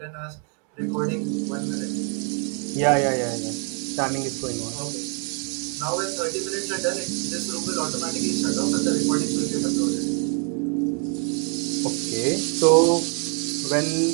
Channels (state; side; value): quieter; left; 39.4 dB